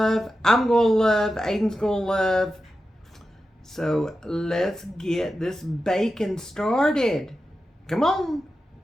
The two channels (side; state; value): both; normal; correlation 0.91